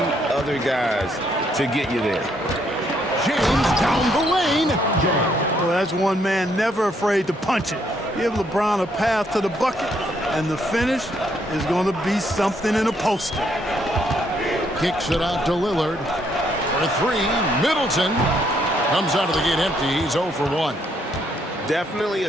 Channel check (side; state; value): both; normal; correlation 0.71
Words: other guys to get you there. James down the lane. Well, that's one man never afraid to punch it. Give LeBron a path to the bucket, and the finish is going to be something in a poster. Kicks it out to Lillard. For three, Middleton comes out of the gate empty. He's 0 for 1. Definitely a